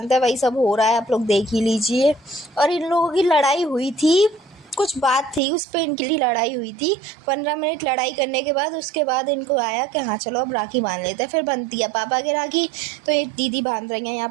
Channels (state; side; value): drops out; left; at 5.4 s